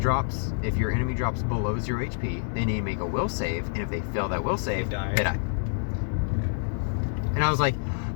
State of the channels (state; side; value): silent; right; 60 dB below the other